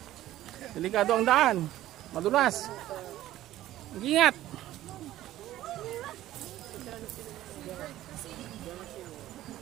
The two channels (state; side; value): quieter; left; 14.3 dB